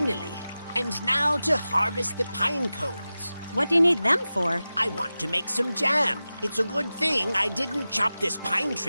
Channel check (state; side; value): inverted; both; correlation -0.95